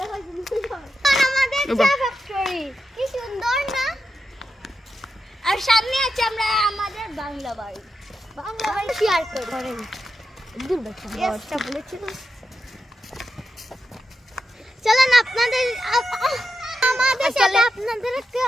আমাদের চা ফ্যাক্টরি কি সুন্দর না? আর সামনে আছে আমরা আমাদের বাংলা বাড়ি। বাংলা বাড়ি শেয়ার করেন। দূরটা বলেছিল। চলেন আপনাদের আমাদের সাথে আপনাদের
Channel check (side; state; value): both; normal; correlation 0.88